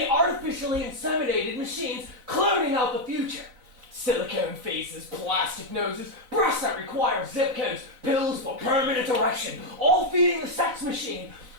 artificially inseminated machines cloning out the future. Silicone faces, plastic noses, breasts that require zip codes, pills for permanent erection, all feeding the sex machine.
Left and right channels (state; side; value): late; left; 4.0 ms